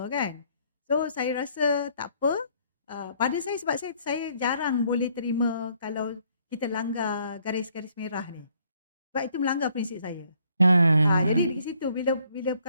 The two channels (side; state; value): both; inverted; correlation -0.67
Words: kan. So saya rasa tak apa. Pada saya, sebab saya jarang boleh terima kalau kita langgar garis-garis merah ni. Sebab itu melanggar prinsip saya. Jadi di situ bila